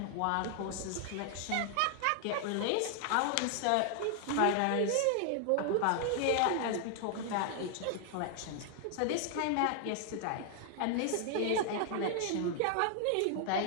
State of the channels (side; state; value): both; different; correlation 0.00